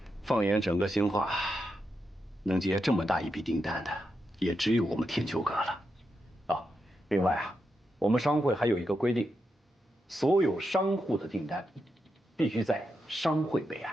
放眼整个兴化，能接这么大一笔订单的，也只有我们天秋阁了。啊，另外啊，我们商会还有一个规定，所有商户的订单必须在商会备案。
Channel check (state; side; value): normal; both; correlation 0.85